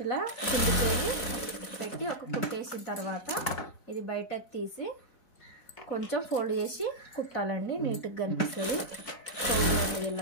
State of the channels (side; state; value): right; late; 4.1 ms